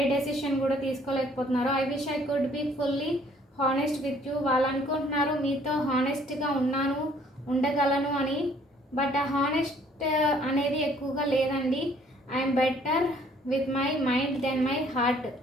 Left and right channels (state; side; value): normal; both; correlation 0.60